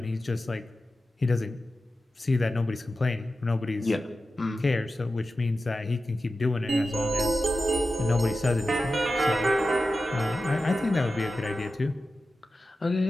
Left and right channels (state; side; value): normal; both; correlation 0.93